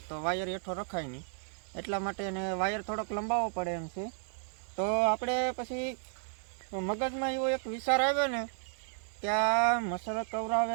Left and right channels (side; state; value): left; silent; 56 dB below the other